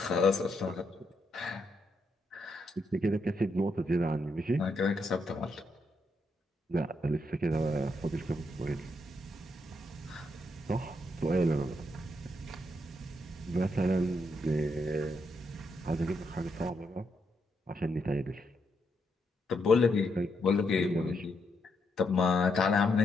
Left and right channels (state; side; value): normal; both; correlation 0.79